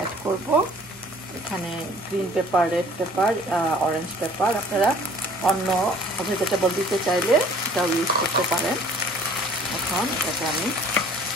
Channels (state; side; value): normal; both; correlation 0.52